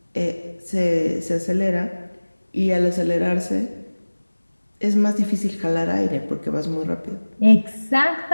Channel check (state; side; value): inverted; both; correlation -1.00